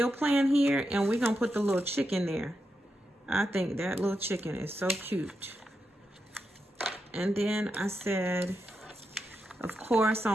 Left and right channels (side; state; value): both; normal; correlation 0.86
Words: plan here and we're gonna put the little chicken there. I think that little chicken is so cute. And then I said, of course,